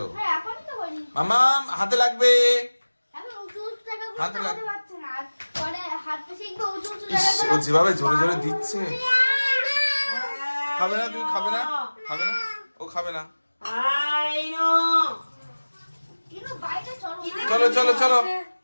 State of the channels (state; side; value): inverted; both; correlation -1.00